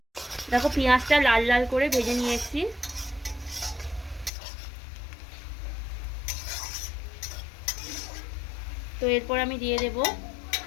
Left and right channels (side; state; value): right; drops out; at 4.3 s